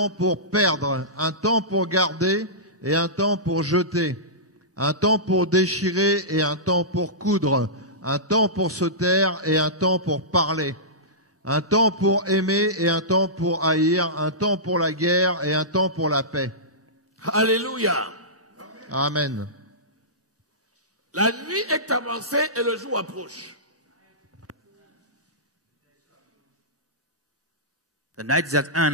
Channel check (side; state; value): both; normal; correlation -0.18